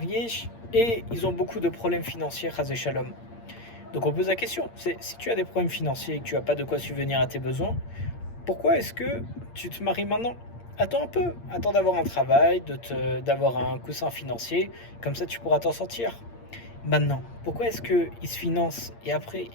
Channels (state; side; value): late; right; 8.6 ms